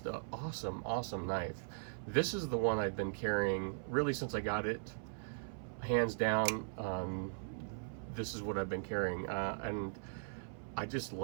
an awesome knife. This is the one I've been carrying really since I got it, hands down. This is what I've been carrying, and I just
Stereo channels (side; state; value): left; silent; 52 dB below the other